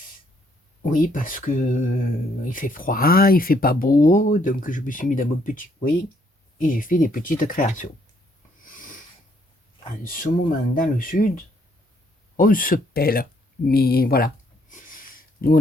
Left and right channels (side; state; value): both; normal; correlation 0.69